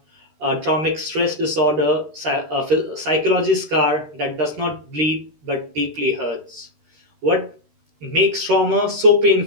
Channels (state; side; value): late; left; 13 ms